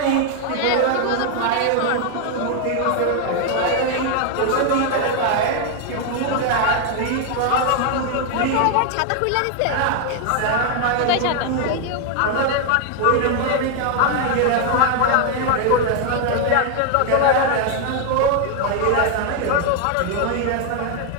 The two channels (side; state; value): both; different; correlation 0.00